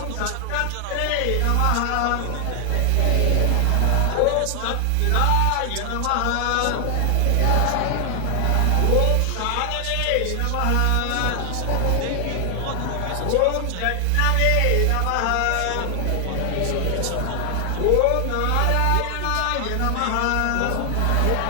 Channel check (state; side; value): different; both; correlation 0.00